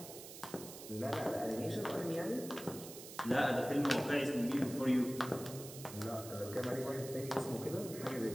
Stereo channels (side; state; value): right; noise; hiss, 13 dB below the sound